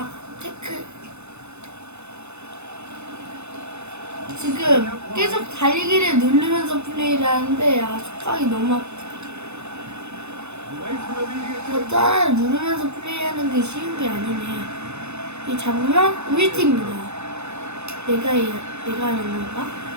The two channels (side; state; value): left; late; 0.81 ms